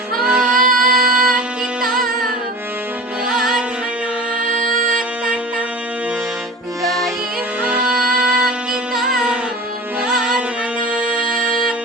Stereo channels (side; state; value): both; normal; correlation 0.37